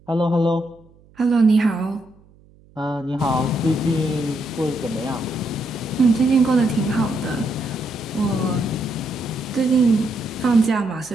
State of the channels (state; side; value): noise; right; hum, 28 dB below the sound